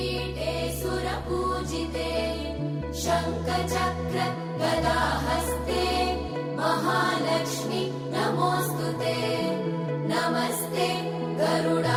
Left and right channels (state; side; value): identical; both; correlation 1.00